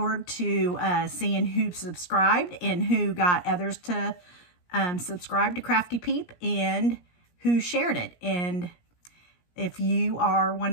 to seeing who subscribed and who got others to subscribe to Crafty Peep, and who shared it. And if you are one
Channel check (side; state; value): right; late; 17 ms